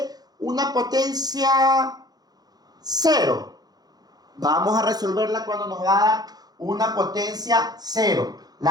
una potencia 0? Vamos a resolverla cuando nos va a dar una potencia 0.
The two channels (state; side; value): late; left; 0.19 ms